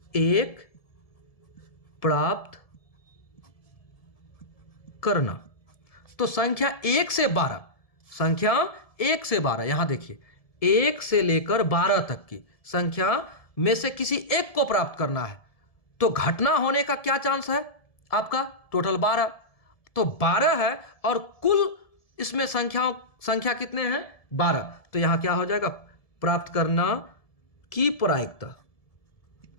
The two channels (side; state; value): right; late; 1.7 ms